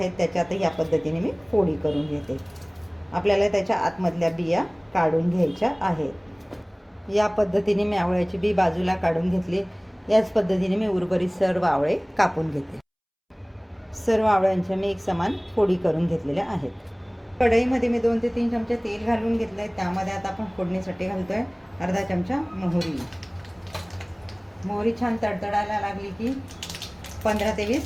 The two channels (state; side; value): identical; both; correlation 1.00